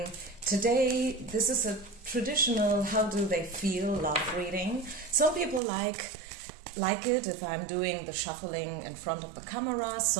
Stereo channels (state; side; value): drops out; left; at 5.6 s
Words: Today this is a traditional how do they feel love reading. Some people like it if I'm doing the shuffling in front of the camera,